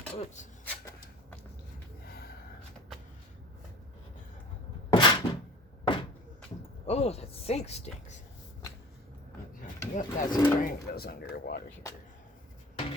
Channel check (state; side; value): normal; both; correlation 0.42